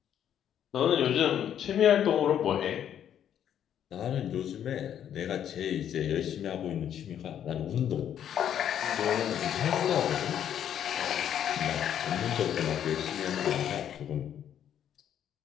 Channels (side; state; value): right; quieter; 9.8 dB